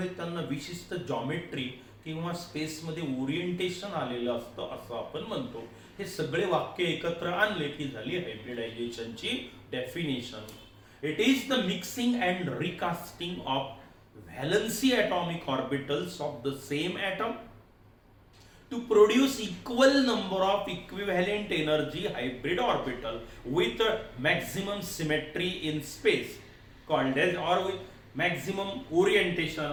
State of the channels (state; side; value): identical; both; correlation 1.00